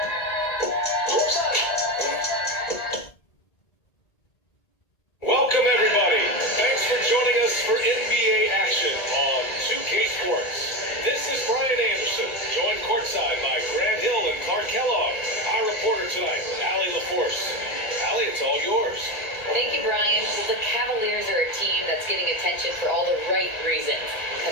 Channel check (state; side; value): late; right; 1.8 ms